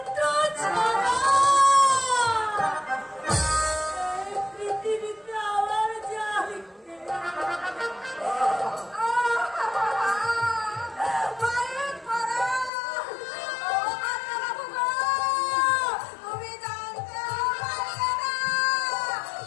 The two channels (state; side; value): drops out; right; at 12.7 s